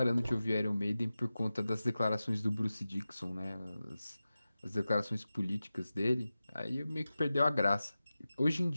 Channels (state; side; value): inverted; both; correlation -0.95